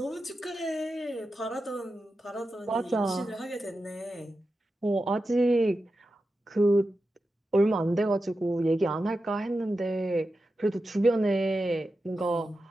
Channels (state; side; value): normal; both; correlation 0.91